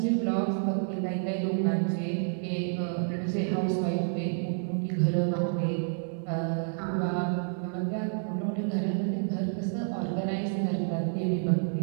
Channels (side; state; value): left; silent; digital silence